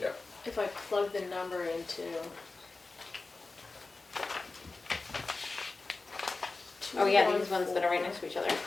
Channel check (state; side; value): quieter; right; 3.7 dB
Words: if I plug the number into. Oh yeah, these ones that are right next to each other.